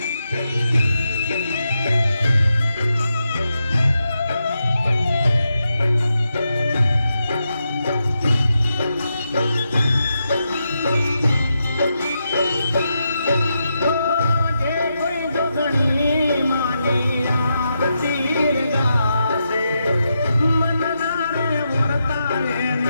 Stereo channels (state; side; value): inverted; both; correlation -0.85